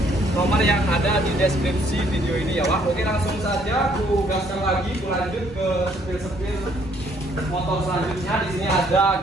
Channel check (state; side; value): normal; both; correlation 0.65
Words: nomor yang ada di deskripsi video ini ya Wak. Oke, langsung saja aku gaskan lagi, aku lanjut ke sepil-sepil motor selanjutnya. Di sini ada